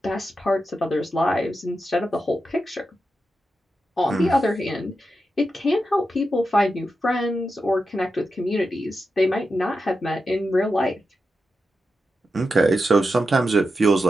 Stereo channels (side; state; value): both; normal; correlation 0.89